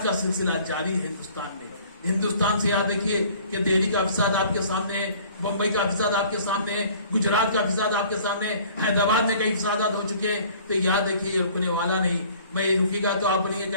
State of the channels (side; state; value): both; inverted; correlation -0.53